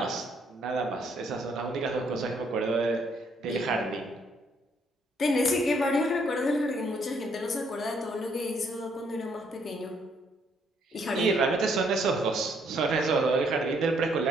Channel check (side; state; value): both; normal; correlation 0.69